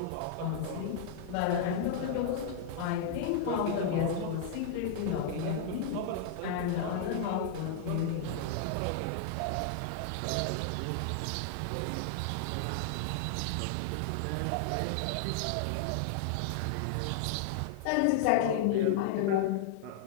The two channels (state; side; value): different; both; correlation -0.01